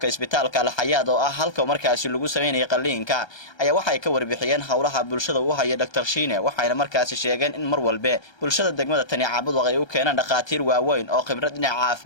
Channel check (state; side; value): late; right; 1.3 ms